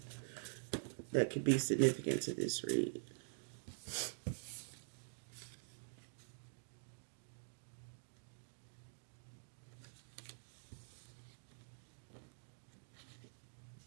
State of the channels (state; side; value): silent; left; digital silence